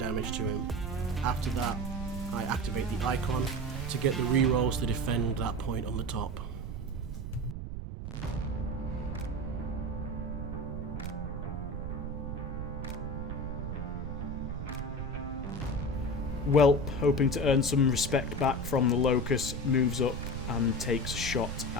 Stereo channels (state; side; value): noise; right; rumble, 5 dB below the sound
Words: to him. After that, I activate the icon to get the rerolls to defend that point on the top. Whelp, hoping to earn some respect back from the Locust, moves up and takes a shot